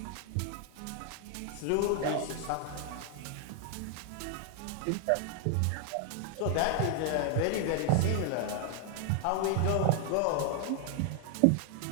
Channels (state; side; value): different; both; correlation 0.00